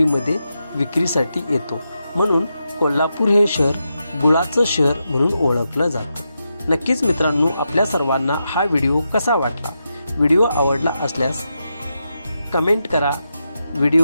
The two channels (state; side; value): inverted; both; correlation -0.86